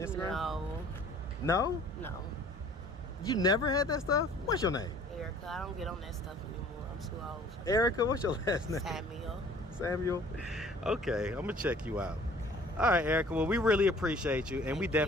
No. No? No. You never had that stuff? What's your name? Erica, I don't get on that stuff anymore. I'm too old. Erica, what's your last name? Samuel. Samuel? Okay, I'm going to check you out. All right, Erica. Well, we really appreciate you, and we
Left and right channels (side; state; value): both; normal; correlation 0.52